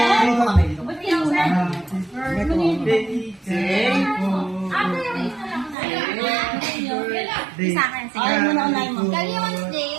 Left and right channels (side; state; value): left; drops out; at 5.8 s